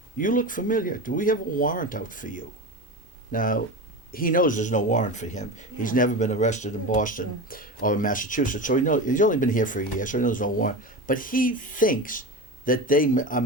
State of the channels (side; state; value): both; normal; correlation 0.25